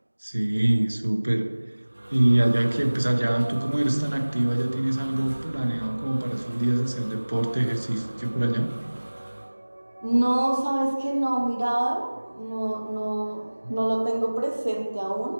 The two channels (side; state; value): both; inverted; correlation -1.00